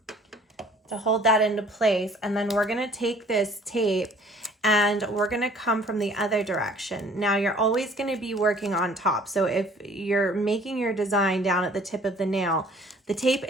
to hold that into place, and then we're going to take this tape and we're going to come from the other direction. Now, you're always going to be working on top. So if you're making your design down at the tip of the nail, the tape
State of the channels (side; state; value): both; normal; correlation 0.54